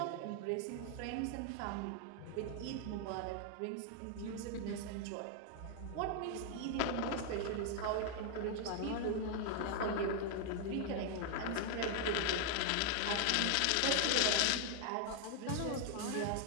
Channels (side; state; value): both; different; correlation 0.00